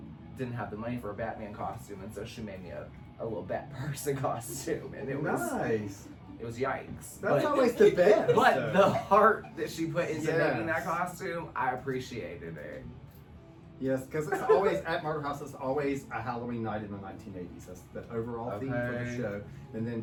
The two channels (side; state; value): both; identical; correlation 1.00